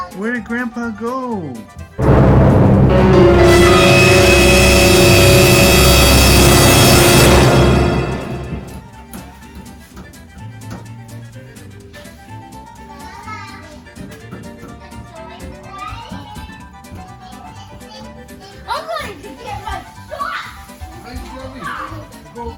Where did Grandpa go? I'm going to get my sock.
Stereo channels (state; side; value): identical; both; correlation 1.00